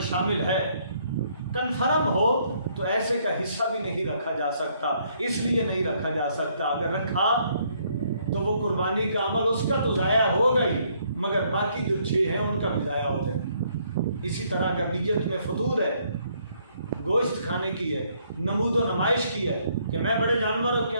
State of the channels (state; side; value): inverted; both; correlation -0.68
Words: شامل ہے، کنفرم ہو تو ایسے کا حصہ بھی نہیں رکھا جا سکتا۔ اس لیے نہیں رکھا جا سکتا، اگر رکھا تو وہ قربانی کا عمل اس کا تو ضائع ہوگا ہی، مگر باقی جو 6 ہیں ان کا بھی ضائع ہو جائے۔ اسی طرح اگر نیت میں فطور ہے، گوشت کھانے کی ہے، نمود و نمائش کی ہے کہ میں بڑے جانوروں کے